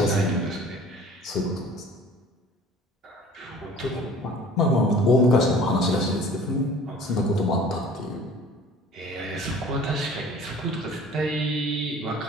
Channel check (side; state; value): both; normal; correlation 0.47